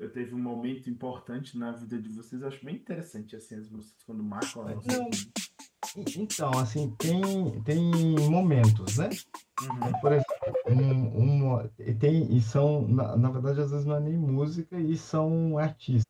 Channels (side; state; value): both; identical; correlation 1.00